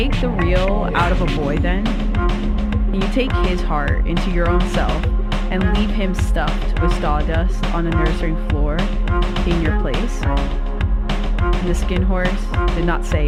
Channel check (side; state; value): both; identical; correlation 1.00